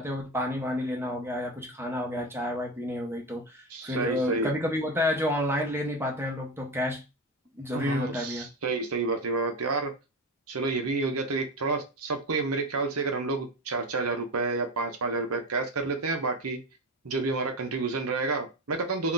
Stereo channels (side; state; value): both; normal; correlation 0.19